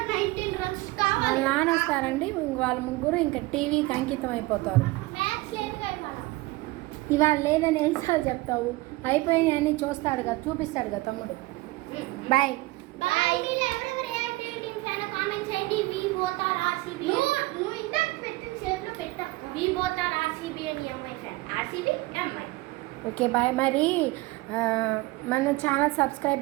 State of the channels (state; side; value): quieter; left; 21.1 dB